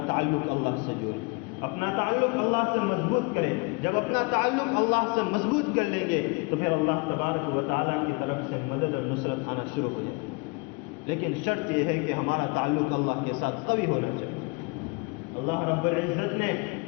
تعلق اللہ سے جوڑیں، اپنا تعلق اللہ سے مضبوط کریں۔ جب اپنا تعلق اللہ سے مضبوط کر لیں گے تو پھر اللہ تبارک و تعالیٰ کی طرف سے مدد اور نصرت آنا شروع ہو جائے گی۔ لیکن شرط یہ ہے کہ ہمارا تعلق اللہ کے ساتھ قوی ہونا چاہیے۔ اللہ رب العزت نے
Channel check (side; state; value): right; quieter; 29.2 dB